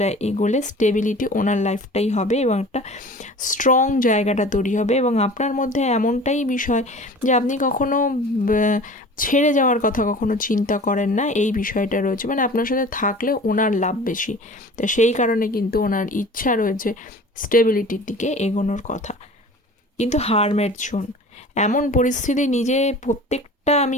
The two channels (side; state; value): both; normal; correlation 0.41